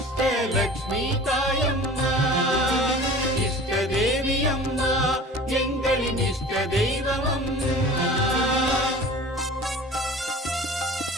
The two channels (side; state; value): both; normal; correlation 0.41